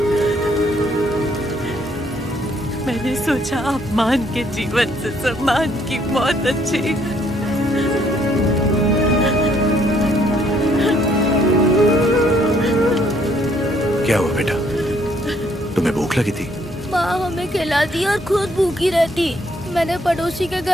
मैंने सोचा अपमान के जीवन से सम्मान की मौत अच्छी। क्या हुआ बेटा? तुम्हें भूख लगी थी? माँ हमें खिलाती और खुद भूखी रहती। मैंने पड़ोसी के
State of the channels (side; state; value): both; normal; correlation 0.67